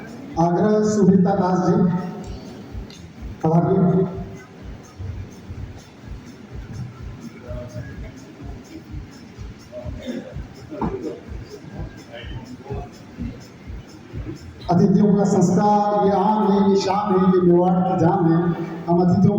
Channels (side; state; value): both; identical; correlation 1.00